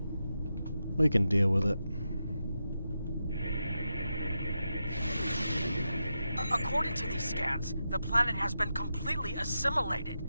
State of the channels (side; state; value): both; inverted; correlation -0.88